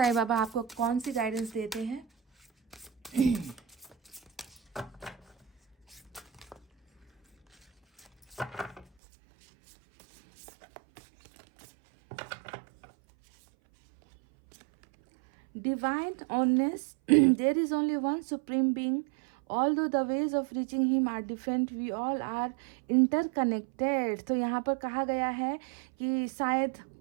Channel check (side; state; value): left; drops out; at 8.8 s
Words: बाबा आपको कौन सी गाइडेंस देते हैं। Divine honest, there is only one supreme being. Although the ways of reaching him are different, we all are interconnected. तो यहाँ पर कहा गया है कि शायद